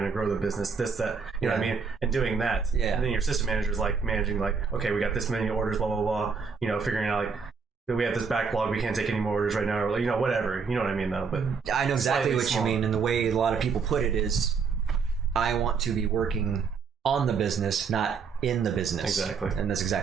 to grow the business? This, that. You know what I mean? And doing that. Yeah. And then your assistant manager is managing okay, we got this many orders, blah, blah, blah. Figuring out we have this backlog, we can't take any more orders right now, or whatever. You know what I mean, though? But I know exactly what you mean. And the way a lot of people put it is, I want to be working on the business, not in the business. Exactly. And that's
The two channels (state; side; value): quieter; left; 5.5 dB